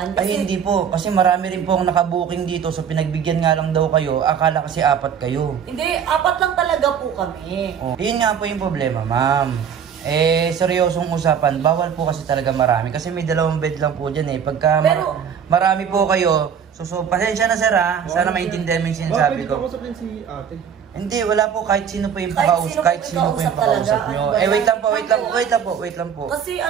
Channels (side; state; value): left; quieter; 7.8 dB